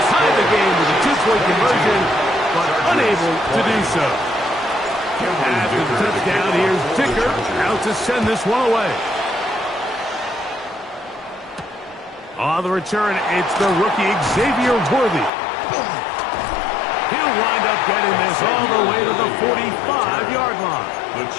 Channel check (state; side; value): drops out; right; at 15.3 s